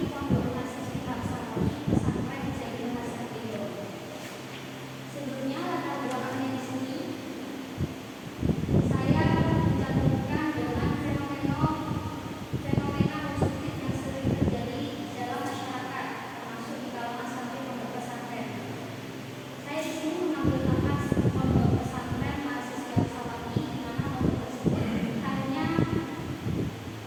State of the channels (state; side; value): identical; both; correlation 1.00